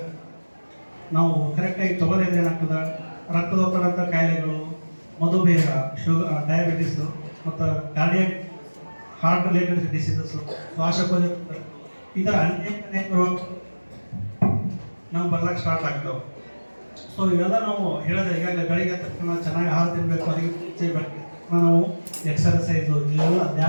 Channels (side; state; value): both; inverted; correlation -1.00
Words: ನಾವು ಕರೆಕ್ಟಾಗಿ ತೊಗೊಳಿದ್ರೆ ಏನಾಗ್ತದೆ, ರಕ್ತದೊತ್ತಡಂಥ ಕಾಯಿಲೆಗಳು, ಮಧುಮೇಹ, ಶುಗರ್, ಡಯಾಬಿಟಿಸು ಮತ್ತು ಕಾರ್ಡಿಯಾಕ್ ಹಾರ್ಟ್ ರಿಲೇಟೆಡ್ ಡಿಸೀಸಸ್ಸು, ಶ್ವಾಸಕೋಶ, ಈ ಥರ ಅನೇಕ ರೋಗ ನಾವು ಬರ್ಲಿಕ್ಕೆ ಸ್ಟಾರ್ಟ್ ಆಗ್ತಾವೆ. ಸೊ ಇವೆಲ್ಲ ನಾವು ಹೇಳಿದ್ರೆ ಈಗಾಗಲೇ ಬೆಳಗ್ಗೆ ತಕ್ಷಣ ಚೆನ್ನಾಗಿ ಆಹಾರ ತಿನ್ನಬೇಕು. ಅದಕ್ಕೆ ನಾವು ಎಕ್ಸರ್ಸೈಸು, ಇವೆಲ್ಲ